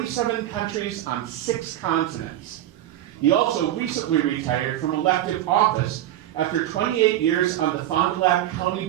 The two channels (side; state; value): left; quieter; 12.9 dB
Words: countries on 6 continents. He also recently retired from elective office after 28 years on the Fond du Lac County